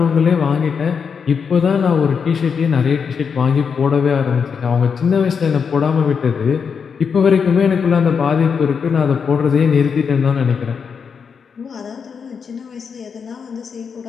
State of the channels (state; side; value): quieter; right; 6.3 dB